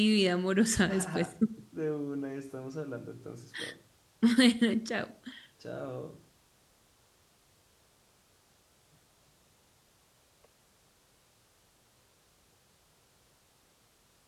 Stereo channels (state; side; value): identical; both; correlation 1.00